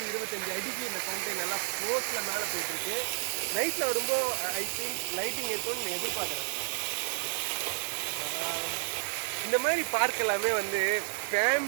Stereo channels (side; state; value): left; silent; digital silence